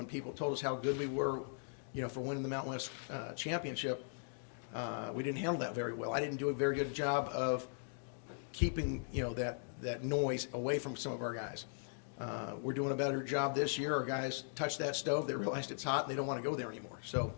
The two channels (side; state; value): right; silent; digital silence